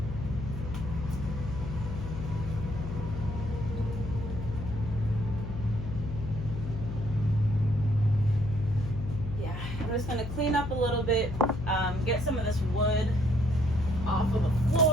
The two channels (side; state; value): left; noise; hum, 6 dB below the sound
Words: I'm just going to clean up a little bit, get some of this wood off of the